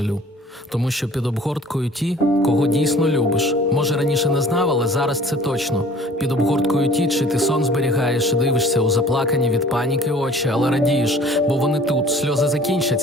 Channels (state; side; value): normal; both; correlation 0.50